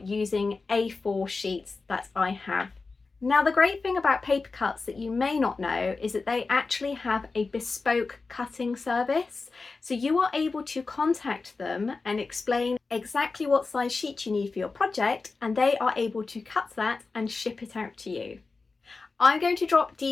A4 sheets that I have. Now the great thing about Paper Cutz that you may not know is that they actually have a bespoke cutting service. So you are able to contact them and explain exactly what size sheet you need for your project, and they are able to cut that and ship it out to you. I'm going to drop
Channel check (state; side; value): quieter; right; 4.1 dB